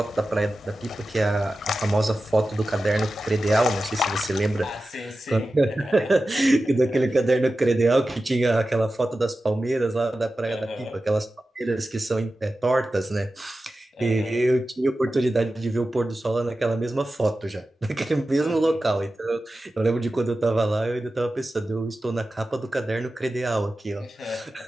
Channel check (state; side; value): normal; both; correlation 0.94